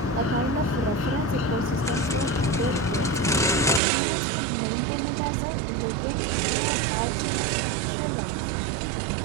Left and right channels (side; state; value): left; drops out; at 3.8 s